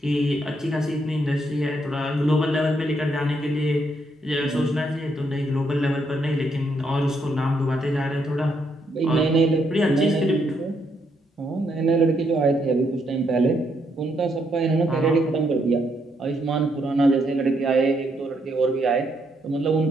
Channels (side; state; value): both; normal; correlation 0.75